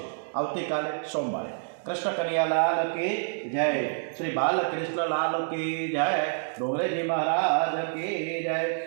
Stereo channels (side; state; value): left; silent; digital silence